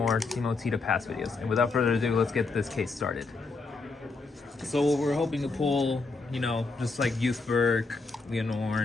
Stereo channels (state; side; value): quieter; right; 3.9 dB